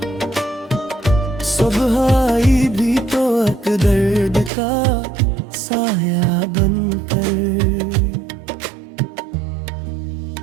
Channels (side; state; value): left; drops out; at 4.5 s